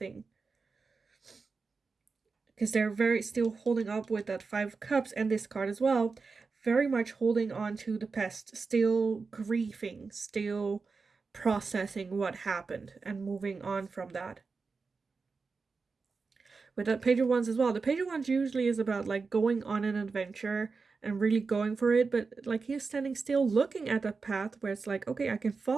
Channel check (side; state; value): left; quieter; 4.6 dB